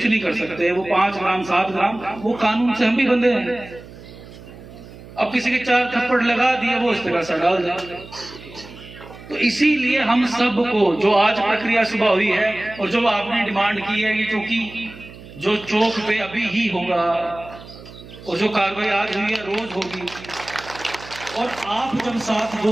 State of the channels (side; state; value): right; noise; hum, 17 dB below the sound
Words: नहीं कर सकते, वो 5 ग्राम 7 ग्राम, वो कानून से हम भी बंधे हैं। अब किसी के 4 थप्पड़ लगा दिए, वो इस तरह से डाल दिया। तो इसीलिए हम सबको, जो आज प्रक्रिया सुबह हुई है और जो आपने डिमांड की है, ये चौकी जो चौक पे अभी ही होगा, और जो कार्रवाई आज हुई है रोज होगी, और आप जब साथ